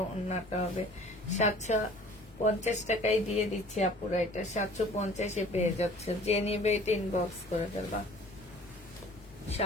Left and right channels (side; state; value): both; normal; correlation 0.49